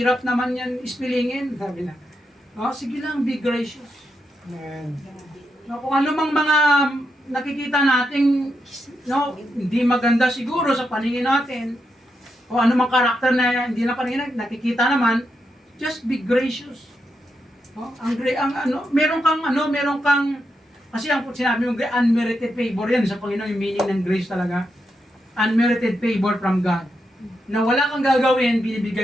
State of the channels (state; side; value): normal; both; correlation 0.84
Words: naman yan ispilingin. Sabi na, no, sige lang, be gracious. Amen. No, kung anumang mga nakikita nating, no, hindi maganda siguro sa paningin natin, o anumang karakter na hindi na paningin, nakikita naman, just be gracious. No, meron kang kasi ang sinabi mong unmerited favor yan sa Panginoon, yung meaning ng grace talaga. Unmerited favor from God. Na wala kang gagawin,